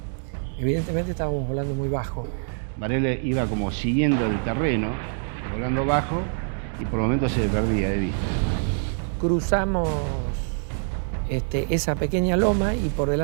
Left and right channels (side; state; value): left; silent; digital silence